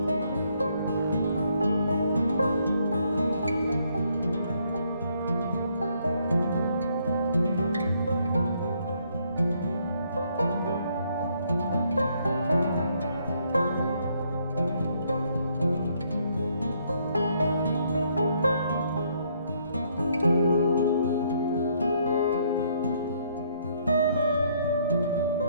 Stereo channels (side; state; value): both; inverted; correlation -0.69